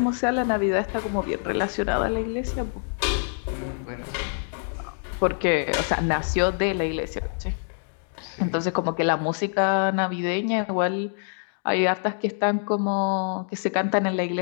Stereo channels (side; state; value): right; silent; 60 dB below the other